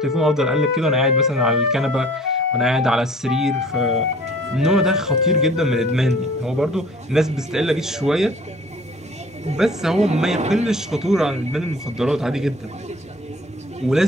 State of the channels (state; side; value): normal; both; correlation 0.50